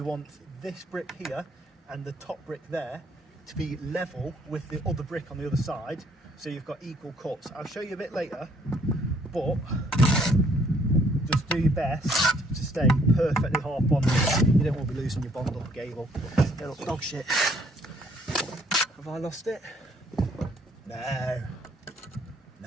want this brick here and the top brick there to be level with the other brick on the other side, so you've got equal cuts. I'll show you a bit later, but just do your best to stay perfectly half on. You don't want to be losing your bond up a gable. Little dog shit. Have I lost it? No.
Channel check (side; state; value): both; normal; correlation 0.64